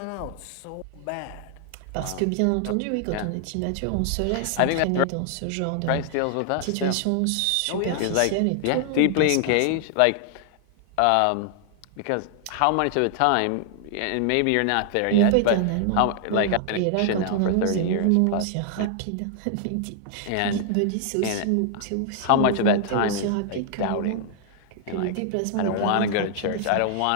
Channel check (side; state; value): both; different; correlation 0.00